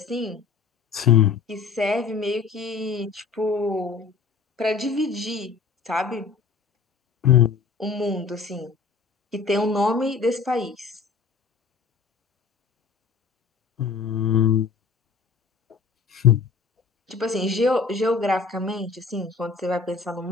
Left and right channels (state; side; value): quieter; right; 5.1 dB